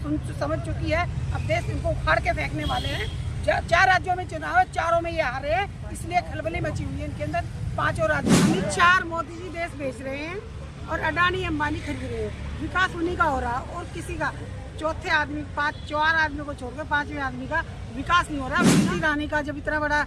समझ चुकी है, अब देश इनको उखाड़ के फेंकने वाले हैं। 4 राज्यों में चुनाव है, 4 में ये हारे हैं, इसलिए खलबली मची हुई है इनके अंदर। 5 राज्यों में 4 मोदी जी देश बेच रहे हैं और अडानी अंबानी खरीद रहे हैं। विकास उन्हीं का हो रहा और किसी का चौथे आदमी 4 आदमियों को छोड़कर 5वें आदमी का विकास नहीं हो रहा। स्मृति ईरानी का जब इतना बड़ा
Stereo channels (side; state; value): both; identical; correlation 1.00